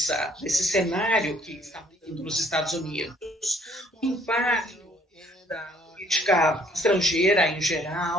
desse cenário que está vindo nos Estados Unidos. O impacto da política estrangeira em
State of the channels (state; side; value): normal; both; correlation 0.62